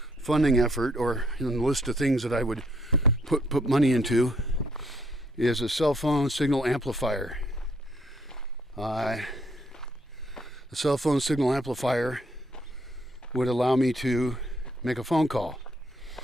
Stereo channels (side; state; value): both; normal; correlation 0.69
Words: funding effort, or in the list of things that I would put money into, is a cell phone signal amplifier. The cell phone signal amplifier would allow me to make a phone call.